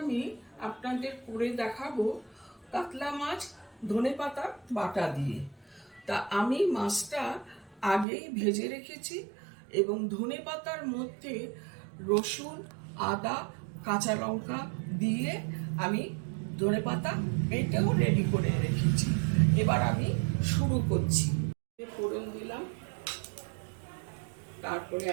আমি আপনাদের করে দেখাবো কাতলা মাছ ধনেপাতা বাটা দিয়ে। তা আমি মাছটা আগেই ভেজে রেখেছি এবং ধনেপাতার মধ্যে রসুন, আদা, কাঁচা লঙ্কা দিয়ে আমি ধনেপাতা বেটেও রেডি করে রেখেছি। এবার আমি শুরু করছি। ফোড়ন দিলাম, তারপরে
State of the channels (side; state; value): left; drops out; at 8.1 s